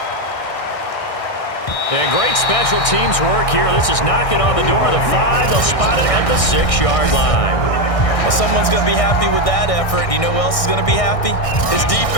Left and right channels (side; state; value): right; late; 1.6 ms